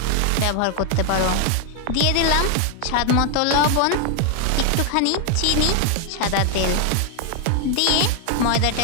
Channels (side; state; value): both; different; correlation 0.00